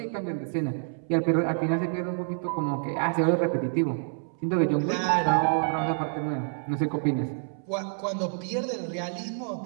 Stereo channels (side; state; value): left; silent; 60 dB below the other